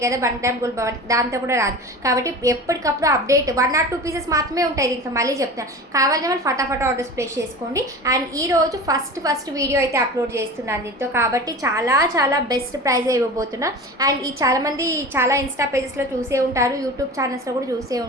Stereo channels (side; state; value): both; normal; correlation 0.33